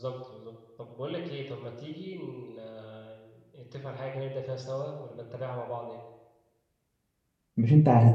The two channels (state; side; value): identical; both; correlation 1.00